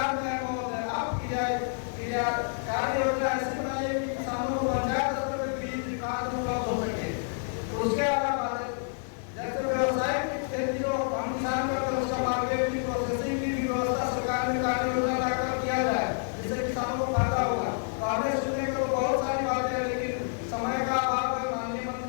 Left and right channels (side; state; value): right; silent; 59 dB below the other